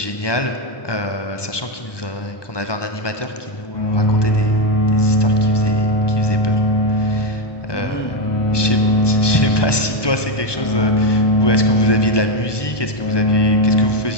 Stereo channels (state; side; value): late; right; 1.2 ms